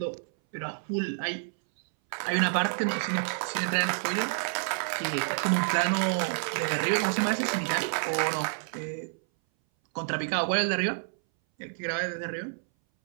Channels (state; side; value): silent; left; 59 dB below the other